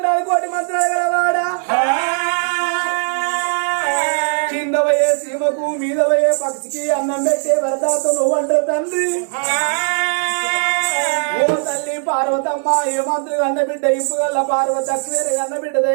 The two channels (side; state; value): left; silent; 67 dB below the other